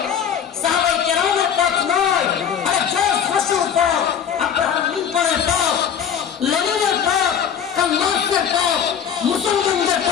সাহাবায়ে কেরামের পথ নয়, আরে জর্জ বুশের পথ, আব্রাহাম লিঙ্কনের পথ, লেনিনের পথ, কার্ল মার্ক্সের পথ মুসলমানদের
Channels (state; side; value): quieter; right; 8.3 dB